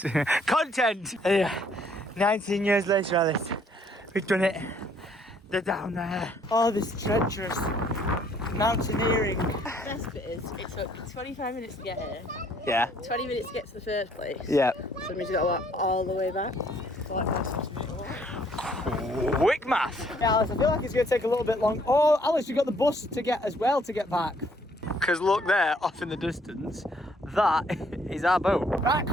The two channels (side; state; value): both; normal; correlation 0.64